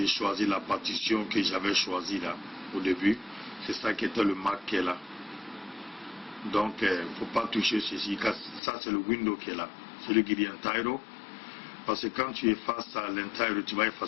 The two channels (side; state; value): right; drops out; at 8.6 s